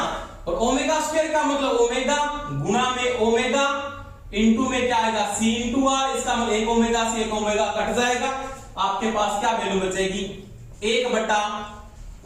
और ओमेगा स्क्वायर का मतलब ओमेगा गुणा में ओमेगा इनटू में क्या आएगा C इनटू R, इसका मतलब 1 ओमेगा से 1 ओमेगा कट जाएगा, आपके पास क्या वैल्यू बचेगी 1 बटा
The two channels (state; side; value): identical; both; correlation 1.00